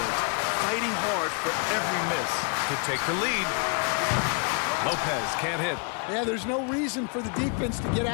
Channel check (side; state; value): right; quieter; 38.6 dB